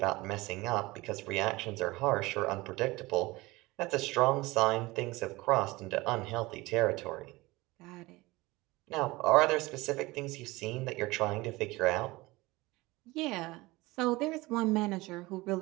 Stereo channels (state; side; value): quieter; left; 21.1 dB